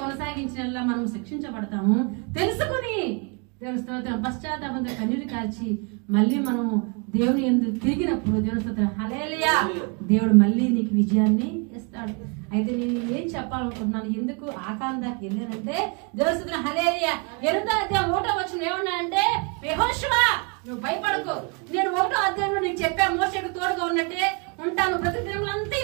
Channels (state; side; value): quieter; left; 34.0 dB